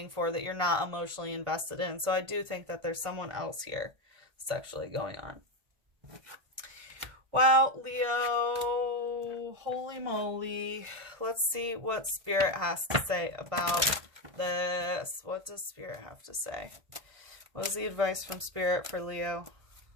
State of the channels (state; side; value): late; left; 1.5 ms